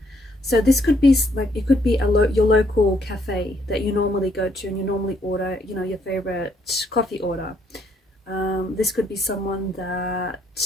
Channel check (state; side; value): normal; both; correlation 0.70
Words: So this could be like, it could be your local cafe that you normally go to and you normally order, your favorite coffee order. This could be someone that